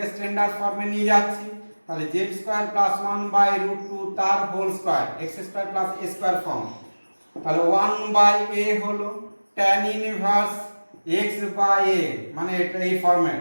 স্ট্যান্ডার্ড ফর্মে নিয়ে যাচ্ছি, তাহলে z স্কয়ার প্লাস 1/√2 তার whole square x square plus a square form তাহলে 1/a হলো tan inverse x by a, মানে এটা এই ফরম্যাট,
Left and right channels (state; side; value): inverted; both; correlation -1.00